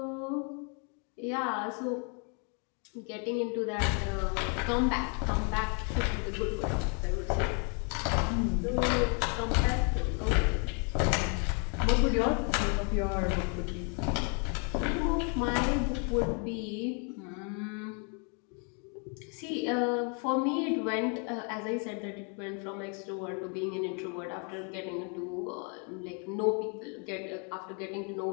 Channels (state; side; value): quieter; right; 38.3 dB